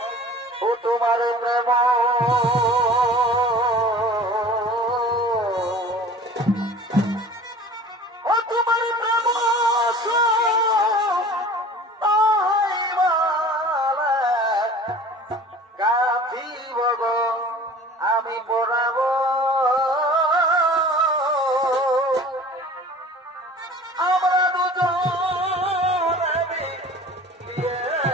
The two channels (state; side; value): normal; both; correlation 0.43